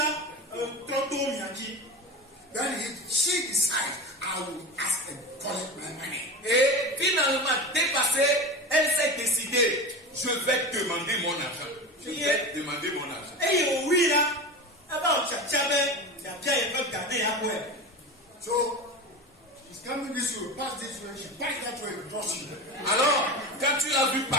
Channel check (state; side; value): normal; both; correlation 0.27